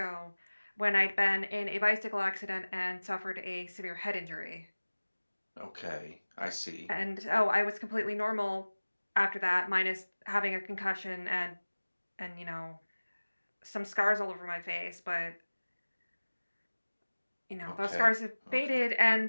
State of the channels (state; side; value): inverted; both; correlation -1.00